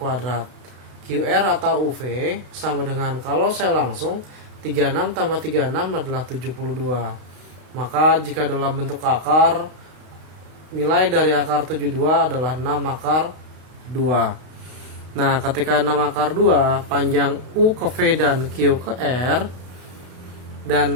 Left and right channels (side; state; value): left; late; 32 ms